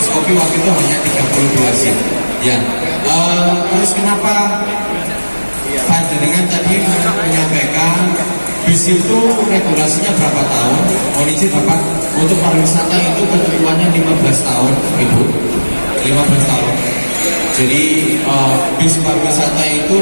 kopi waktu itu hanya 32 seat. Ya. Terus kenapa panjenengan tadi menyampaikan bis itu regulasinya berapa tahun? Mohon izin Bapak, untuk pariwisata itu ketentuannya 15 tahun, Ibu. 15 tahun. Jadi bis pariwisata itu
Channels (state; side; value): inverted; both; correlation -1.00